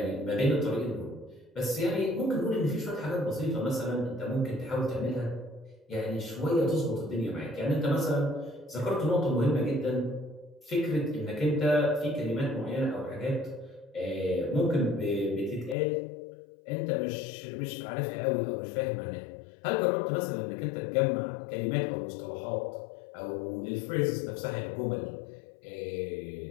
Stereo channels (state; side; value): drops out; right; at 15.8 s